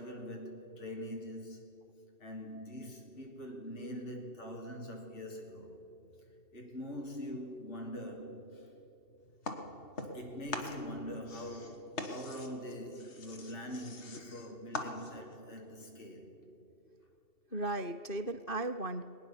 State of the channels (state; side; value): late; right; 2.7 ms